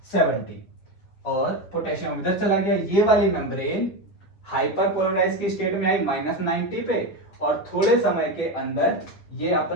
70, और पोटेशियम इधर चला गया, ये वाली मेम्ब्रेन हाइपर पोलराइज की स्टेट में आई -90 पे, और थोड़े समय के अंदर ये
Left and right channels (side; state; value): right; late; 10 ms